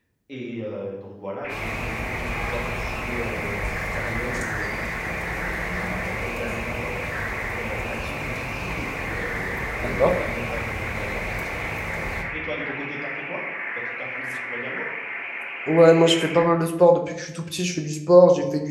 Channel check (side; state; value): both; identical; correlation 1.00